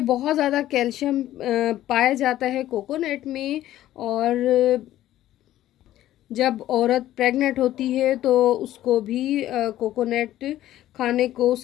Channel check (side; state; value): right; quieter; 13.6 dB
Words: बहुत ज़्यादा कैल्शियम पाया जाता है कोकोनट में, और जब औरत प्रेग्नेंट होती है तो उसको भी कोकोनट खाने को,